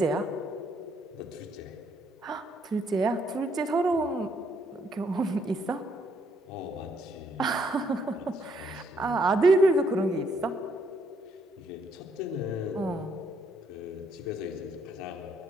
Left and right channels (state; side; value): normal; both; correlation 0.71